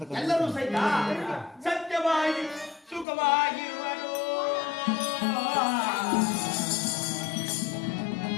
ಎಲ್ಲರೂ ಸಹಿತ ಸತ್ಯವಾಗಿ ಸುಖವಾಗಿರುವರು.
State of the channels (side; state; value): right; drops out; at 3.1 s